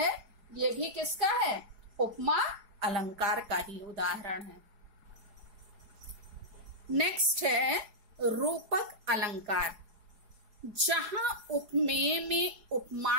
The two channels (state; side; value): late; left; 4.8 ms